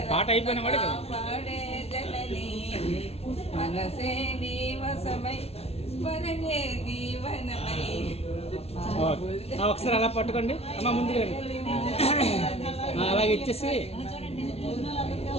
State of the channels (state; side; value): late; right; 0.30 ms